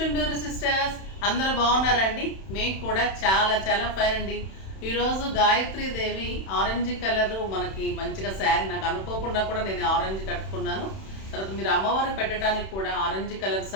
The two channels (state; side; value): late; right; 31 ms